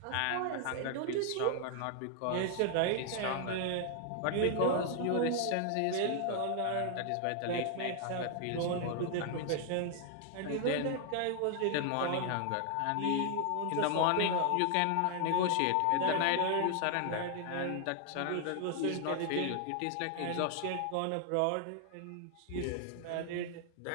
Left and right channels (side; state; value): both; different; correlation 0.00